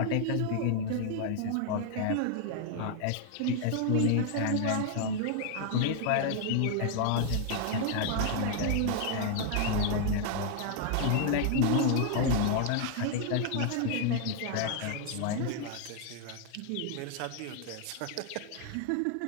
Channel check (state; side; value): different; both; correlation 0.00